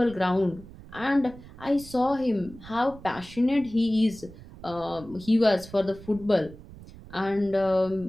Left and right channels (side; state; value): right; noise; rumble, 18 dB below the sound